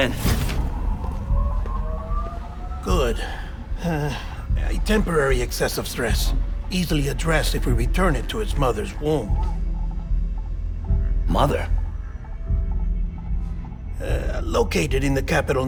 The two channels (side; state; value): both; identical; correlation 1.00